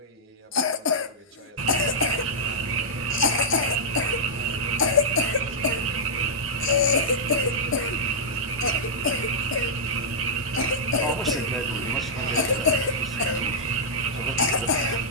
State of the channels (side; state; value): both; normal; correlation -0.10